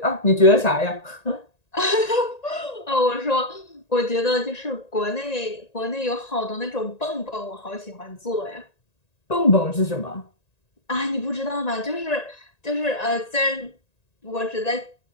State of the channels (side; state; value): right; late; 1.9 ms